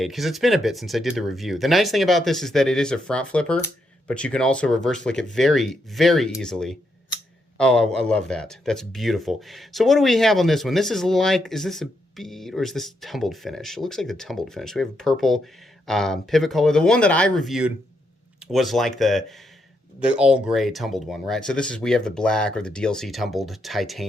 because it's been a bit since I did the review. The nice thing about this is that it is a front flipper, but you can also reverse flick it very, very easily. Oh, I love that. That's beautiful. So what do we have on this one? This is like, is this a bead or is this tumbled finish? It looks like the tumbled finish. We have a purple pivot color. The one that I reviewed was like the all gray tumbled one, right? So this is, we have the black or the DLC tumbled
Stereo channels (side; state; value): both; normal; correlation 0.79